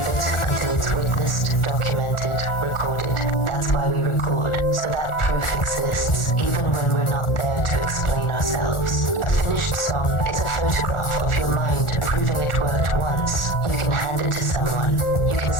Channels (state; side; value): late; right; 1.4 ms